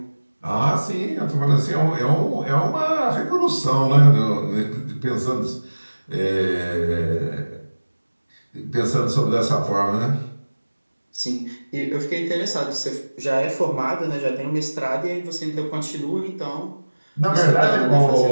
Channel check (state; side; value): inverted; both; correlation -1.00